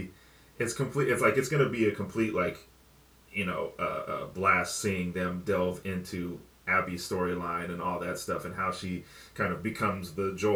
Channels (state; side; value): identical; both; correlation 1.00